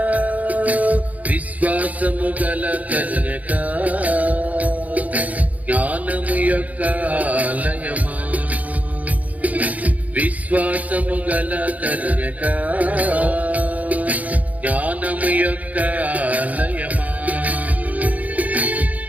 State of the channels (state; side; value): late; left; 0.073 ms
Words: విశ్వాసము గల కన్యక జ్ఞానము యొక్క ఆలయమా విశ్వాసము గల కన్యక జ్ఞానము యొక్క ఆలయమా